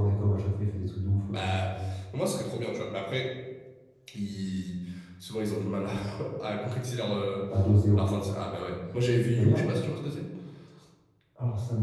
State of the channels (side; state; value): both; identical; correlation 1.00